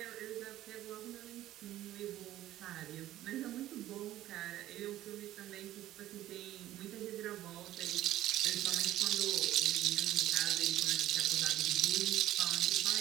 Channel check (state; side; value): quieter; left; 14.0 dB